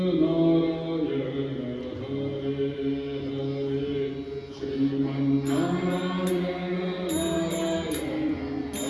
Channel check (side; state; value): both; identical; correlation 1.00